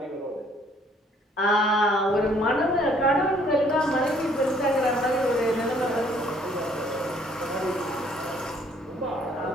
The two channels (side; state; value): both; normal; correlation 0.62